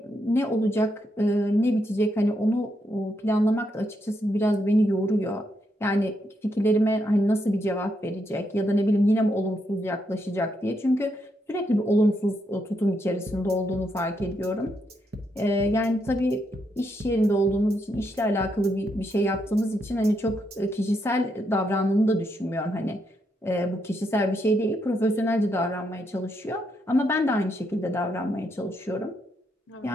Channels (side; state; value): both; normal; correlation 0.79